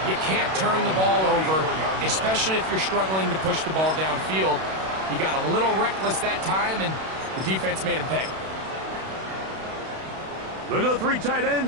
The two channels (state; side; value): late; left; 32 ms